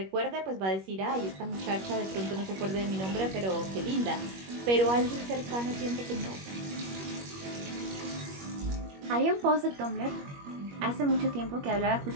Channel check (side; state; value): left; late; 21 ms